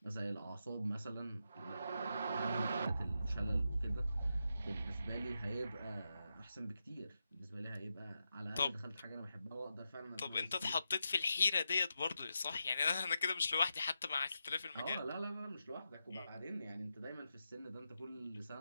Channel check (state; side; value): inverted; both; correlation -0.87